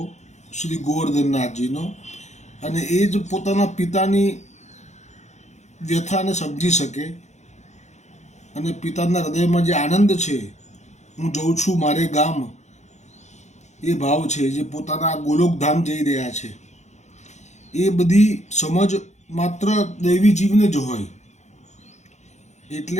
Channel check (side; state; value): right; late; 0.33 ms